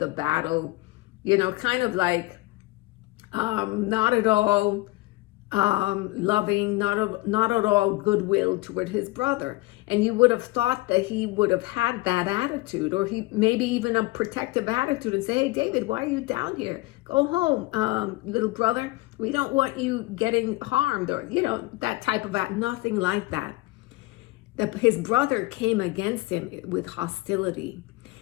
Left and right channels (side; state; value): right; quieter; 21.0 dB